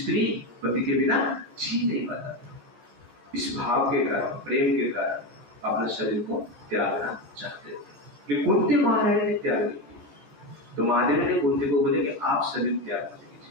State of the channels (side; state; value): left; late; 14 ms